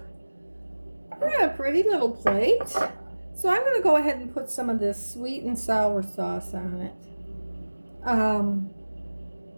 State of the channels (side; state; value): both; inverted; correlation -1.00